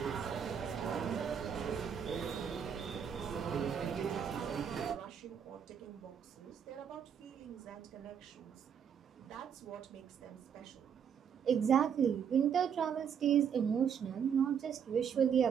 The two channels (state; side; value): quieter; left; 7.8 dB